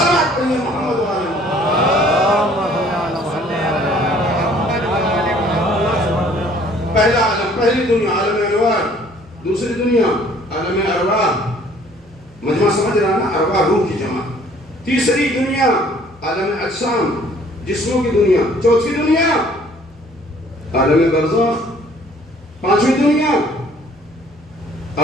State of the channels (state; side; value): normal; both; correlation 0.57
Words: پڑھیے محمد والے۔ پہلا عالم، پہلی دنیا عالم انوار، دوسری دنیا عالم ارواح، مجمع سمجھ رہا نا، ارواح روح کی جمع۔ تیسری دنیا عالم اجسام، جسموں کی دنیا۔ چوتھی دنیا عالم برزخ۔ پانچویں دنیا